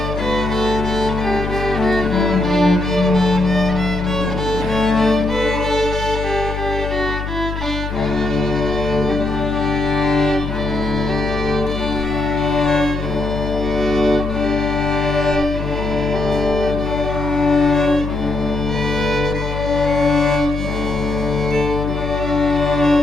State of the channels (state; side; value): noise; left; hum, 5 dB below the sound